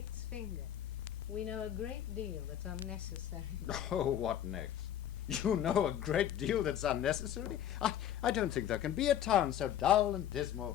finger. We know a great deal that's unnecessary. Oh, what next? You know a great deal that's unnecessary? I don't think there can be a town so dull and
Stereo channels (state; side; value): quieter; right; 10.8 dB